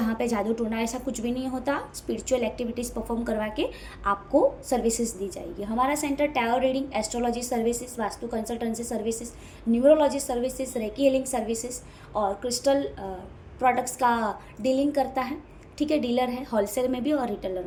पे जादू टोना ऐसा कुछ भी नहीं होता। स्पिरिचुअल एक्टिविटीज़ परफॉर्म करवा के आपको सर्विसेज दी जाएगी। हमारा centre tarot reading, astrology services, vastu consultancy services, neurology services, recce healing services और क्रिस्टल प्रोडक्ट्स का डीलिंग करता है, ठीक है। डीलर है होलसेल में भी और रिटेलर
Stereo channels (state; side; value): identical; both; correlation 1.00